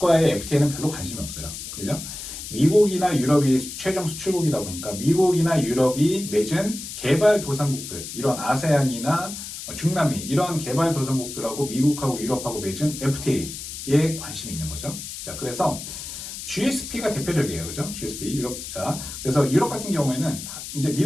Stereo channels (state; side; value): noise; left; hiss, 9 dB below the sound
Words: FTA는 별로 관심이 없어요. 그죠? 미국이나 유럽이 최종 수출국이다 보니까 미국이나 유럽이 맺은 개발도상국들, 이런 아세안이나 중남미, 이런 개발도상국들하고 미국하고 유럽하고 맺은 FTA에 관심이 있는 거죠. 자, 그래서 GSP가 대표적이에요. 그죠? GSP, 유럽. 자, 그래서 유럽 같은 경우에는 이제